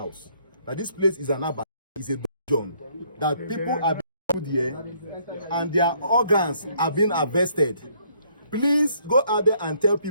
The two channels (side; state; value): both; inverted; correlation -0.66